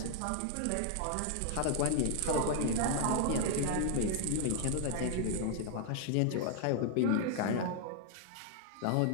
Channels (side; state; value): both; different; correlation 0.00